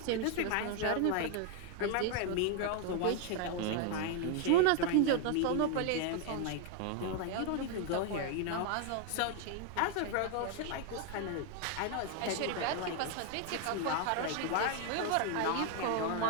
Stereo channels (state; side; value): different; both; correlation 0.00